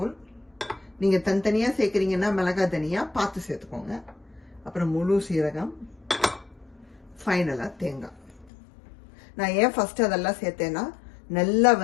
நீங்க தனித்தனியா சேர்க்கறீங்கன்னா மிளகா தனியா பார்த்து சேர்த்துக்கோங்க. அப்புறம் முழு சீரகம், ஃபைனலா தேங்காய். நான் ஏன் ஃபர்ஸ்ட் அதெல்லாம் சேர்த்தேன்னா நல்லா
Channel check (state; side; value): drops out; right; at 8.5 s